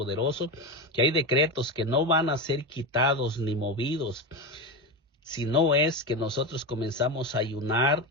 que hay decretos que no van a ser quitados ni movidos, si no es que nosotros comenzamos a ayunar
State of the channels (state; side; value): normal; both; correlation 0.17